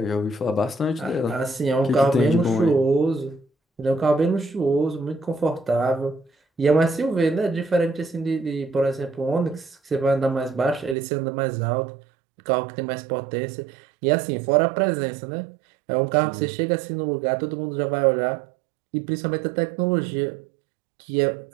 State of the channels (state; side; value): drops out; left; at 11.0 s